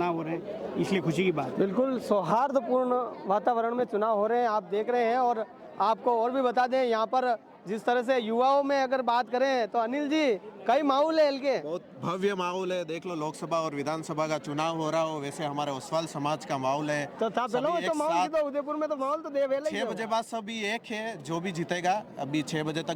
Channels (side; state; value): both; identical; correlation 1.00